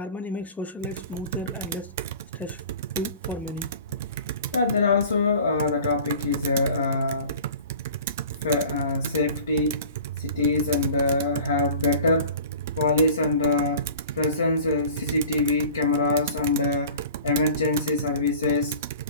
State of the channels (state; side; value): inverted; both; correlation -0.43